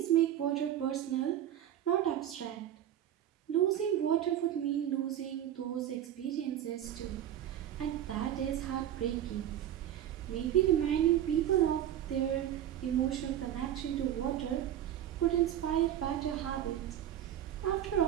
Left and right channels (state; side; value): quieter; left; 11.1 dB